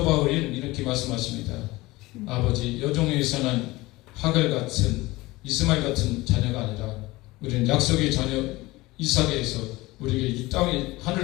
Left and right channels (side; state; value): right; quieter; 20.3 dB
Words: 바울이 이렇게 말씀하십니다. 아버지 여종에서는 하갈 같은 이스마엘 같은 자녀가 아니라 우리는 약속의 자녀 이삭에서 우리에게 이 땅에